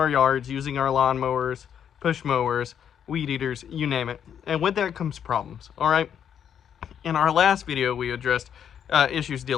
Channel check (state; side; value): quieter; right; 8.7 dB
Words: yards using our lawnmowers, push mowers, weed eaters, you name it. And with that comes problems, all right? In our last video, we addressed issues